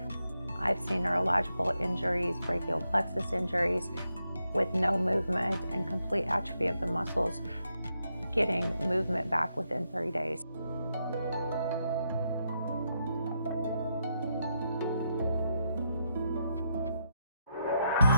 I've seen neurological injuries, brachial plexus injuries with no movement and complete atrophy of the muscles, getting movement back within 3 days.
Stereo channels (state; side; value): inverted; both; correlation -0.82